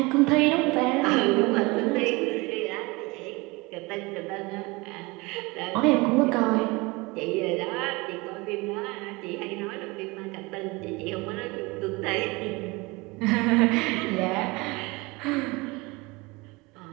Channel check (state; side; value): quieter; left; 24.5 dB